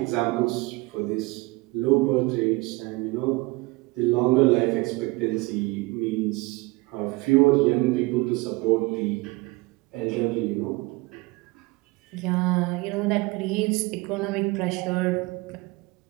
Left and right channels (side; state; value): left; quieter; 23.4 dB